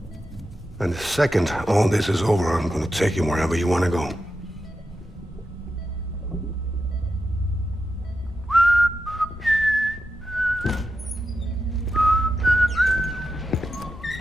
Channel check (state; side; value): normal; both; correlation 0.89